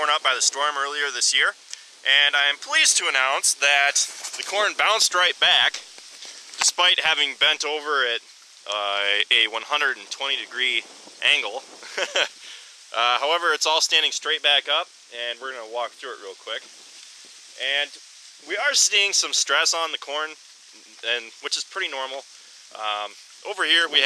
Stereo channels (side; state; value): both; identical; correlation 1.00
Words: up by the storm earlier this year. And I am pleased to announce that the corn bounced right back, despite having bent over at a 120-degree angle. However, it's all standing straight back up, and we're going to walk through it real quick. And we are seeing some stress on the corn, which is pretty normal. Over here we